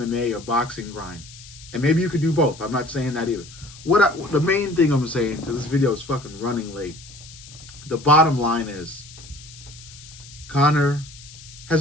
or boxing grind. And maybe you could do both. I'm not saying that either. The main thing I'm saying, because this video is fucking running late. The bottom line is, Conor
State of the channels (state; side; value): noise; left; hiss, 18 dB below the sound